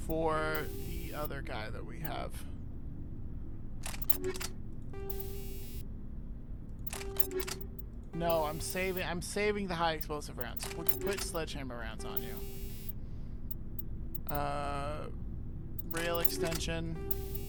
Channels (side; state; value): both; identical; correlation 1.00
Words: for the other guy that we have. No, I'm saving the high explosive rounds. We can put sledgehammer rounds on you. Rail extension,